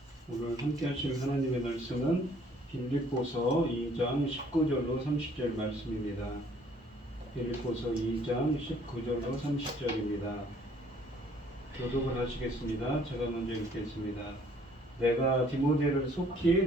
오늘 함께 하실 하나님의 말씀은 빌립보서 2장 19절로 30절 말씀입니다. 빌립보서 2장 19절로 30절입니다. 교독을 하시겠습니다. 제가 먼저 읽겠습니다. 내가 디모데를 속히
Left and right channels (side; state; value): both; normal; correlation 0.60